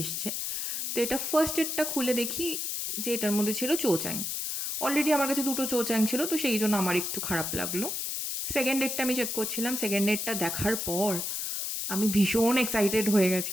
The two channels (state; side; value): noise; left; hiss, 2 dB below the sound